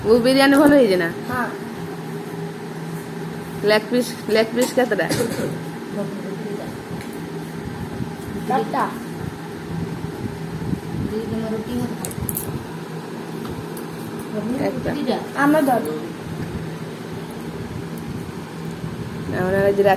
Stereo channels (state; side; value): identical; both; correlation 1.00